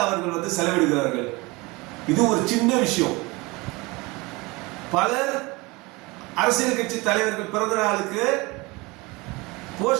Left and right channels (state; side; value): quieter; left; 24.2 dB